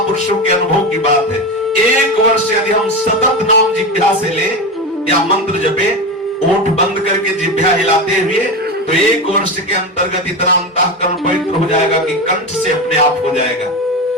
के अनुभव की बात है। 1 वर्ष यदि हम सतत नाम जिह्वा से ले या मंत्र जपे, ओठ बंद करके जिह्वा हिलाते हुए, तो 1 वर्ष के अंतर्गत इतना अंतःकरण पवित्र हो जाएगा कि कंठ से अपने आप हो जाएगा।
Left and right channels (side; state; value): both; normal; correlation 0.20